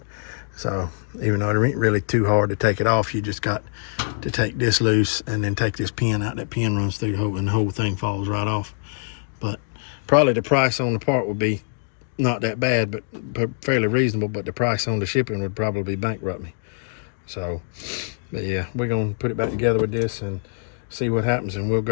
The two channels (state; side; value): silent; right; digital silence